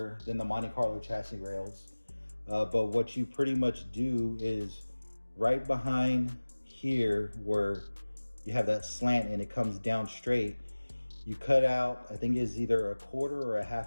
than the Monte Carlo chassis rails, but what you pretty much do is right behind here where you have that slant and it comes down straight, you cut out, I think it's either a 1/4 or a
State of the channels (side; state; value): both; inverted; correlation -1.00